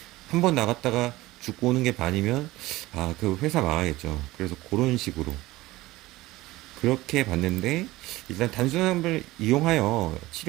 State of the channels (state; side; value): quieter; left; 18.5 dB